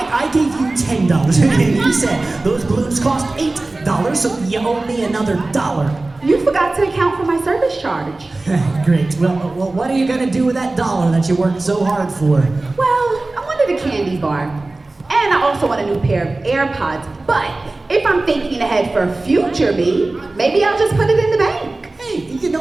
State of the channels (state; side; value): quieter; left; 3.1 dB